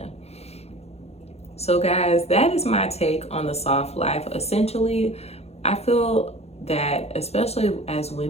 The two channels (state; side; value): late; right; 0.30 ms